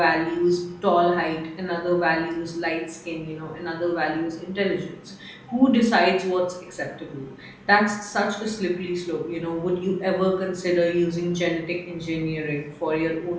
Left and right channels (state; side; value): identical; both; correlation 1.00